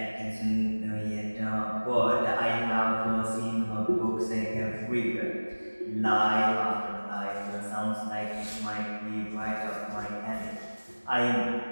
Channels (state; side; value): inverted; both; correlation -1.00